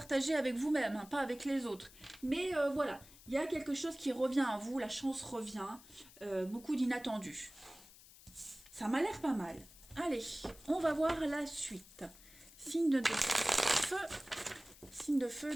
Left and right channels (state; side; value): noise; left; hiss, 21 dB below the sound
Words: avec vous-même, hein, pas avec les autres. Mais voilà, il y a quelque chose qui revient à vous. La chance revient. Beaucoup d'inattendus. Ça m'a l'air pas mal. Allez, on va voir la suite. Signe de feu